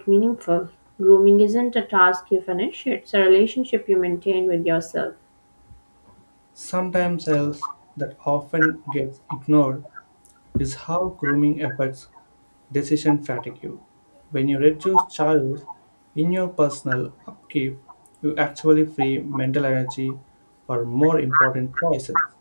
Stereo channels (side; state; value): both; inverted; correlation -1.00